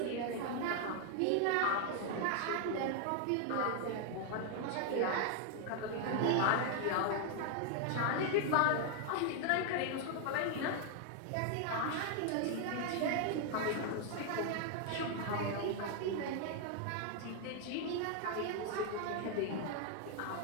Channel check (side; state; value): both; different; correlation 0.00